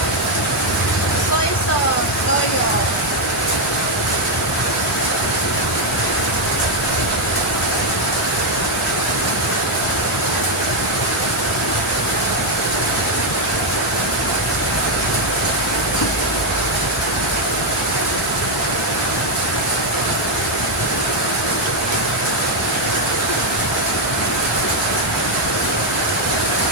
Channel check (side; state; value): both; normal; correlation 0.02